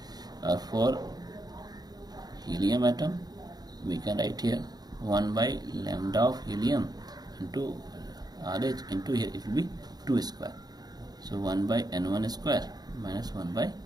For helium atom, we can write here 1 by lambda of helium into RH into here it will be 2 square. So 1 by N1 square minus 1 by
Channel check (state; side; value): late; left; 0.19 ms